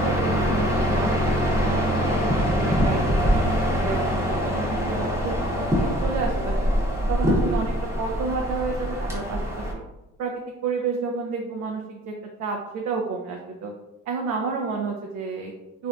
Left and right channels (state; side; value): normal; both; correlation 0.52